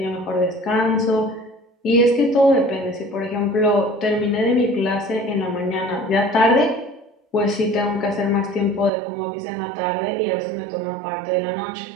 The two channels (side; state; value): left; drops out; at 8.9 s